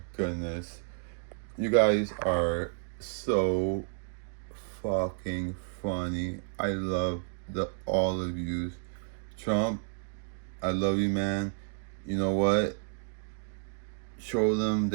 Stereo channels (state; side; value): silent; left; digital silence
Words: goodness, you guys are so fucking funny. I love the all of you. Trump, I love you, man. You know what? Show them